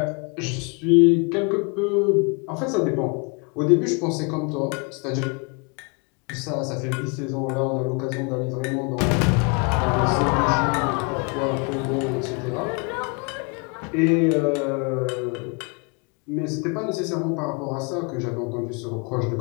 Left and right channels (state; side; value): quieter; right; 33.2 dB